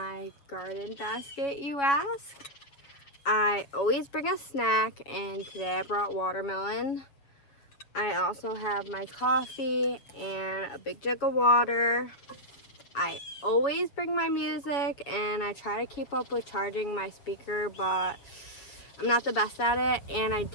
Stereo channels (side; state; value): right; late; 7.2 ms